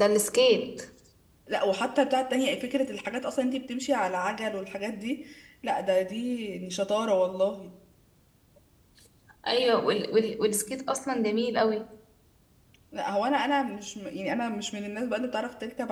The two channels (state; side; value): identical; both; correlation 1.00